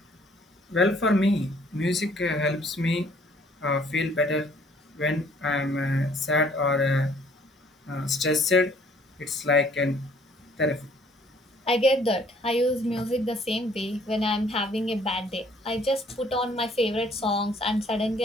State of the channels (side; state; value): both; normal; correlation 0.60